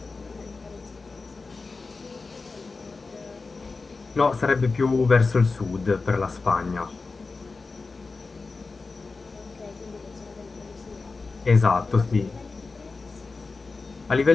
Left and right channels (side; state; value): right; quieter; 4.1 dB